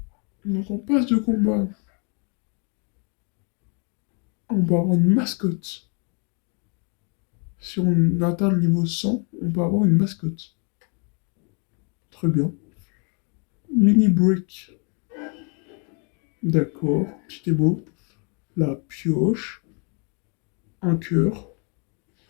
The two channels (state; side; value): quieter; right; 37.2 dB